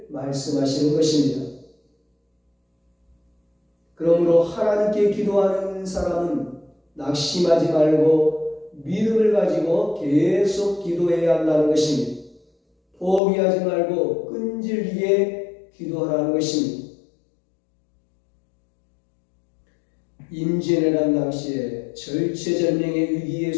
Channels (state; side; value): drops out; right; at 13.2 s